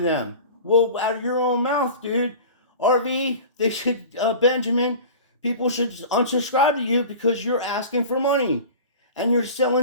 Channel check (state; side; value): inverted; both; correlation -0.37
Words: them. Well, out of your own mouth, dude. RV, they should, Benjamin, people should unsubscribe to you because you're asking for money. And you're